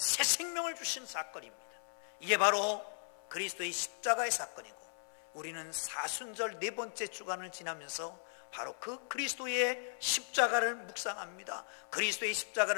생명을 주신 사건입니다. 이게 바로 그리스도의 십자가의 사건이고, 우리는 사순절 네 번째 주간을 지나면서 바로 그 그리스도의 십자가를 묵상합니다. 그리스도의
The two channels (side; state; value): right; silent; 53 dB below the other